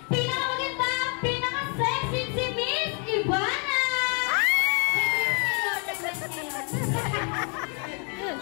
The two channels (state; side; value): quieter; right; 37.8 dB